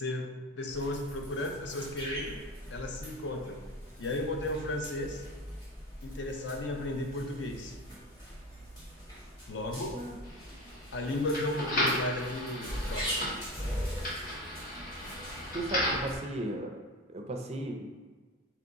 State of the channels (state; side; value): normal; both; correlation 0.28